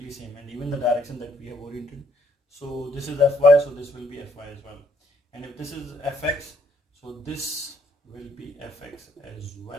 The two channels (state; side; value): normal; both; correlation 0.67